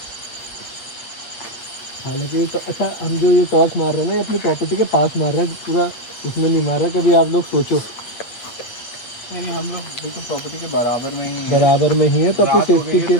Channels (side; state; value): right; late; 8.5 ms